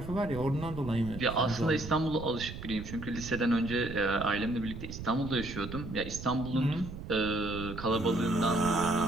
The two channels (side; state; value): right; noise; rumble, 10 dB below the sound